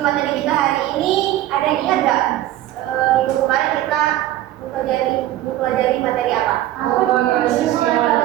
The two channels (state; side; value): quieter; left; 14.1 dB